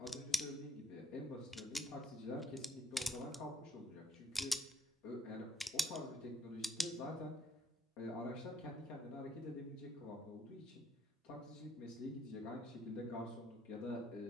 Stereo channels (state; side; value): normal; both; correlation 0.68